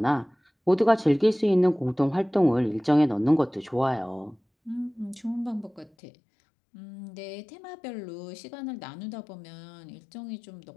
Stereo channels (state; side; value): drops out; right; at 5.9 s